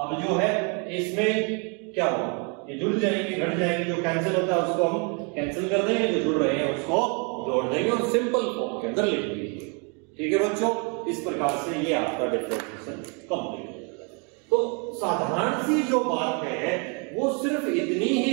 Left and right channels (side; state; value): left; quieter; 35.4 dB